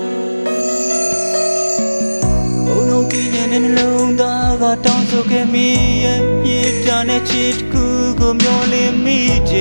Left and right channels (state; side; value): inverted; both; correlation -1.00